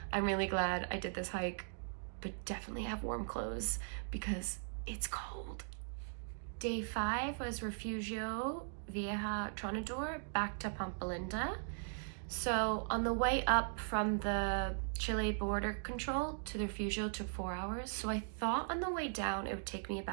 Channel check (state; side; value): silent; left; digital silence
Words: I'm really glad I did this hike, but definitely have warm clothes because it's cold. Day 5 was Refugio Viejo Tronador back to Pampa Linda. So on the way up from the Chile border control to the Refugio took 4 hours. So I thought on the way down it would take me